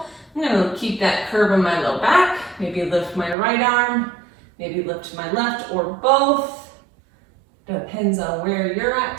I'm going to keep that curve in my low back. Maybe lift my right arm, maybe lift my left or both. Depends on where you're at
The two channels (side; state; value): left; drops out; at 3.4 s